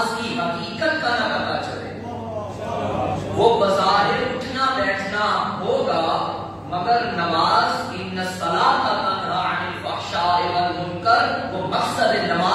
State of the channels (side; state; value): both; identical; correlation 1.00